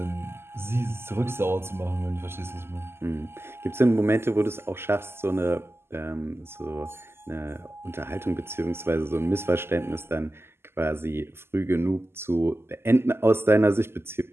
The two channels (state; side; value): late; left; 0.12 ms